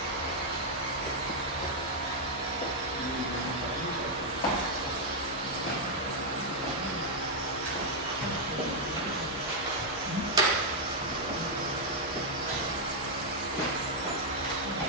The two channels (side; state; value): both; normal; correlation -0.02